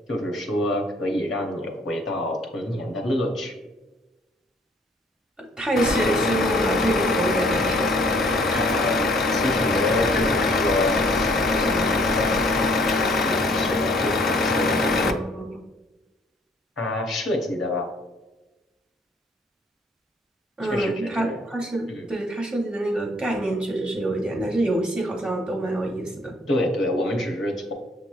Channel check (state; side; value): normal; both; correlation 0.61